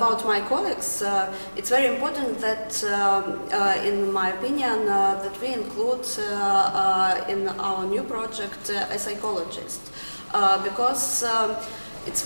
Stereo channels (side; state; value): both; inverted; correlation -1.00